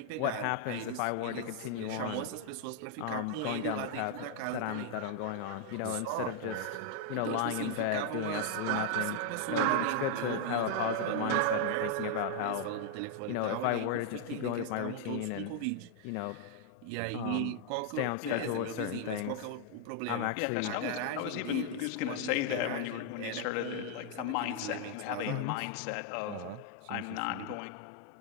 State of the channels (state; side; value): different; both; correlation 0.00